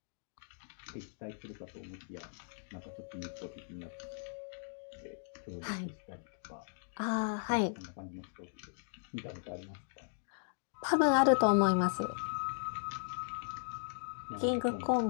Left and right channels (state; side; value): silent; right; digital silence